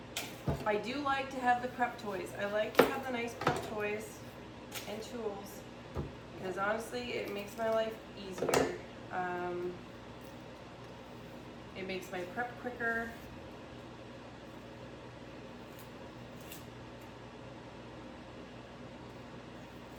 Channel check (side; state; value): both; identical; correlation 1.00